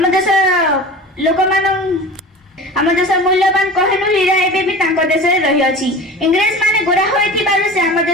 मूल्यवान कहनु हीरा एबे भी तांको देश रे रही अछि। इंग्रेज माने गोरा होइथि बारु से आम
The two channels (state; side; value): normal; both; correlation 0.35